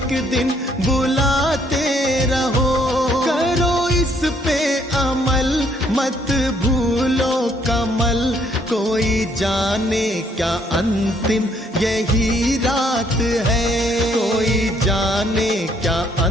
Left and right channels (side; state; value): both; normal; correlation 0.67